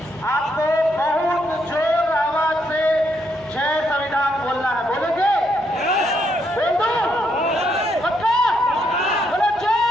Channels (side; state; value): left; noise; hum, 25 dB below the sound